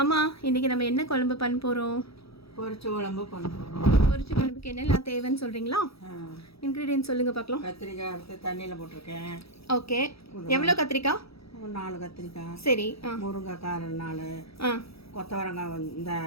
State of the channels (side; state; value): right; late; 0.77 ms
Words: அம்மா இன்னைக்கு நம்ம என்ன குழம்பு பண்ண போகிறோம்? பொரிச்ச குழம்பு பண்ணுறோம். பொரிச்ச குழம்புக்கு என்னெல்லாம் தேவைன்னு சொல்கிறீங்களா? இன்க்ரீடியன்ட் சொல்லுங்கள் பார்க்கலாம். கத்திரிக்காய் எடுத்து தண்ணியில் போட்டிருக்கேன். ஓகே. எவ்வளோ கத்திரிக்காய்? ஒரு 4 கத்திரிக்காய். சரி. முருங்கைக்காய் 4. கொத்தவரங்காய் இந்த